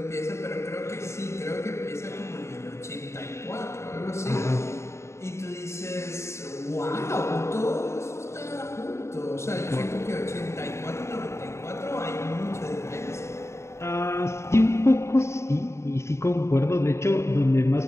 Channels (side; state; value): right; late; 0.13 ms